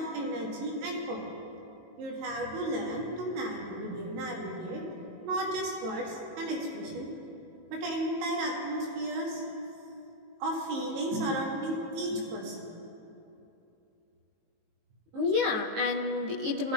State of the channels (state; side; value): late; left; 18 ms